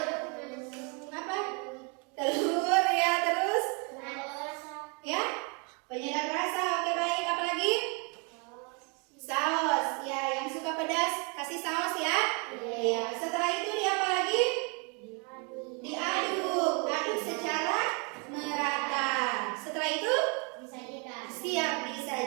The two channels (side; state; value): left; quieter; 34.3 dB